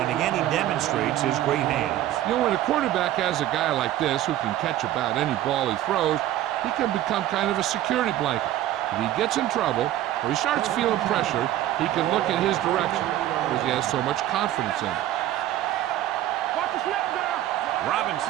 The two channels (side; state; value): left; quieter; 13.4 dB